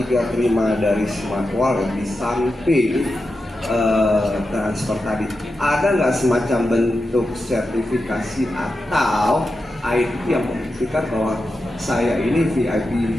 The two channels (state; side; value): normal; both; correlation 0.90